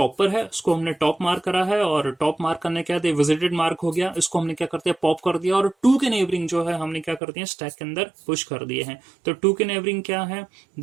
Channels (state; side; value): drops out; left; at 7.2 s